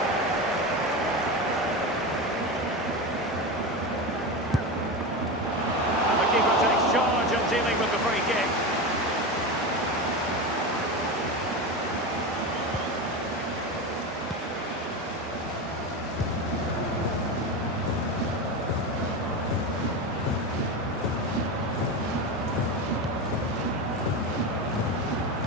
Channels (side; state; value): both; normal; correlation 0.20